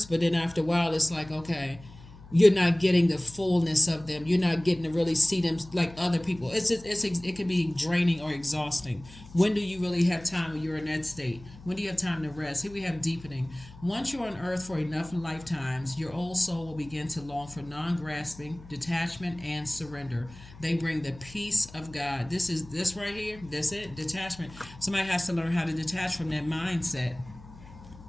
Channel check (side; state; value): left; noise; hum, 19 dB below the sound